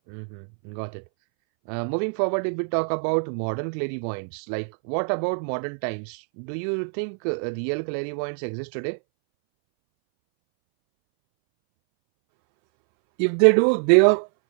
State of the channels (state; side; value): silent; left; 61 dB below the other